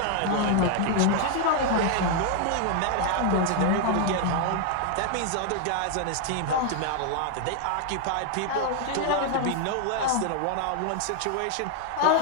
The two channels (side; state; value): both; different; correlation 0.00